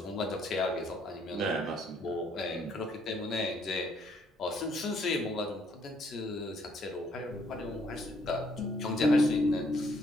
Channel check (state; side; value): normal; both; correlation 0.67